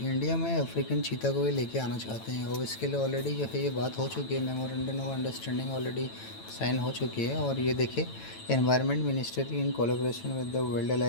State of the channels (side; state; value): right; late; 9.0 ms